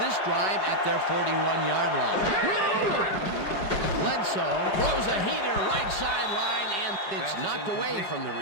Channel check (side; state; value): right; late; 5.2 ms